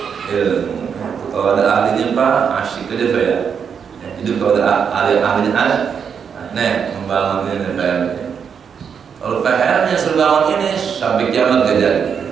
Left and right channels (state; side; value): quieter; left; 7.0 dB